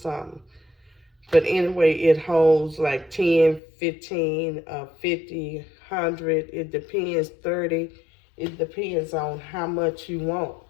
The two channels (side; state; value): right; drops out; at 3.6 s